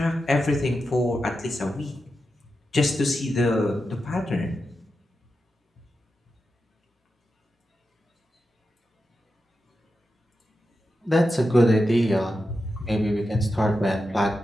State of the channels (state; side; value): normal; both; correlation 0.89